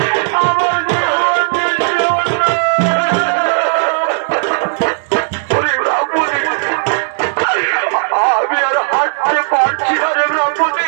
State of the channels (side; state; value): left; silent; digital silence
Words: আমার জীবন যে শূন্য। আমি আর হাঁটতে পারছি না রে ব্রাহ্মণী,